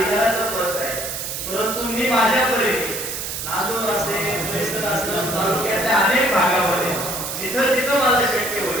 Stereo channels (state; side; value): noise; right; hiss, 5 dB below the sound